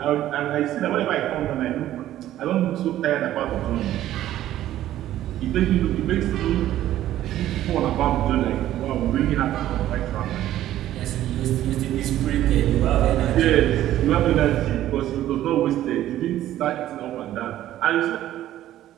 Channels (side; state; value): left; quieter; 13.2 dB